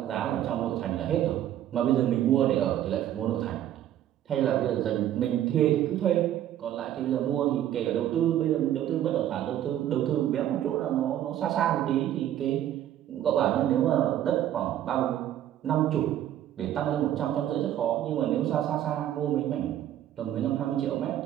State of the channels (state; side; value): quieter; left; 11.7 dB